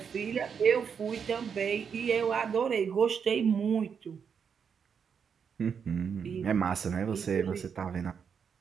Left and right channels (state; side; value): quieter; left; 6.8 dB